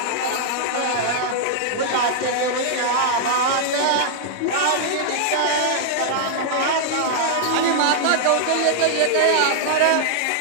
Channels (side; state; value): both; different; correlation -0.01